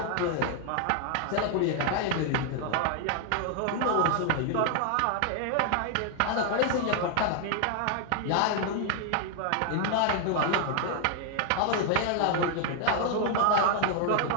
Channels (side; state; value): both; different; correlation 0.00